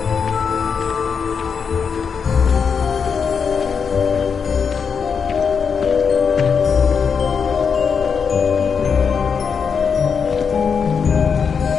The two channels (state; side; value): quieter; right; 6.2 dB